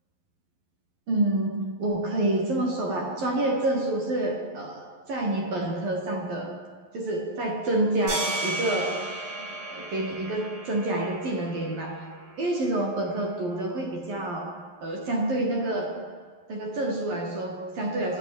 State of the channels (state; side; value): late; left; 11 ms